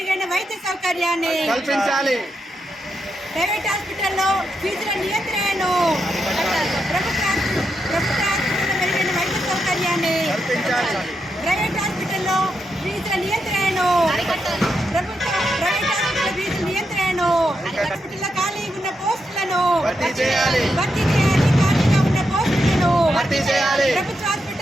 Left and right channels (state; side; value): normal; both; correlation 0.84